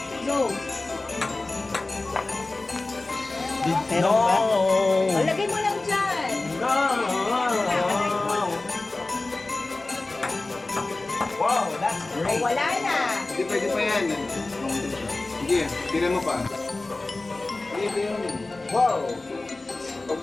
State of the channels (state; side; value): quieter; right; 3.1 dB